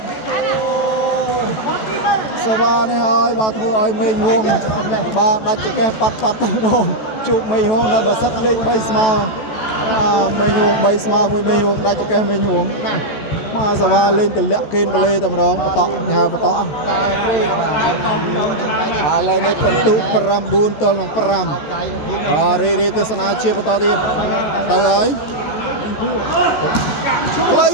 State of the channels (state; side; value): late; right; 14 ms